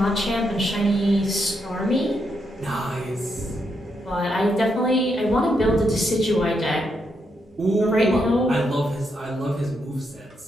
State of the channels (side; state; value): both; normal; correlation 0.80